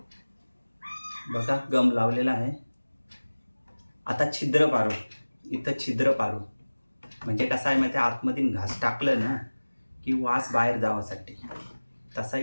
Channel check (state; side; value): inverted; both; correlation -1.00